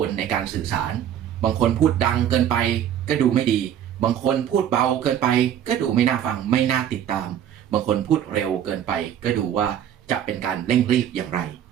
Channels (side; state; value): left; quieter; 10.0 dB